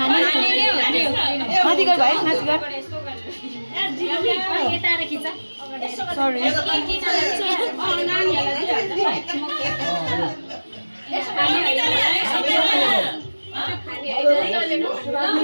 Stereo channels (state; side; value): inverted; both; correlation -1.00